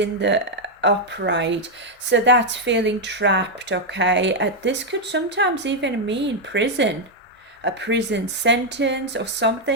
the upright, so that's feeling trapped, okay. This could sometimes even mean prison, a prison sentence or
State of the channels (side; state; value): both; normal; correlation 0.00